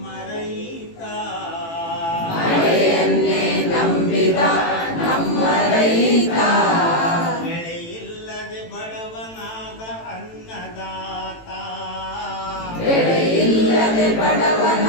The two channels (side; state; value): right; late; 18 ms